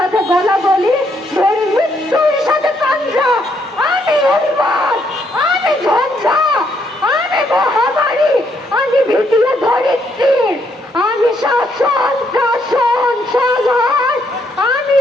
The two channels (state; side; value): normal; both; correlation 0.73